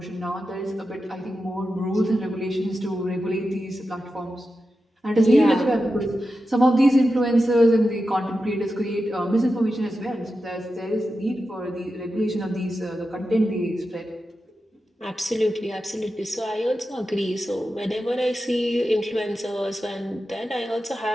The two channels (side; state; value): both; normal; correlation 0.91